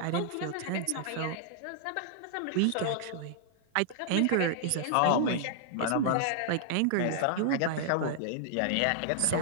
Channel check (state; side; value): different; both; correlation -0.01